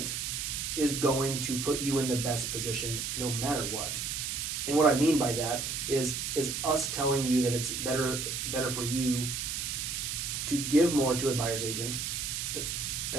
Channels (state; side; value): noise; right; hiss, 3 dB below the sound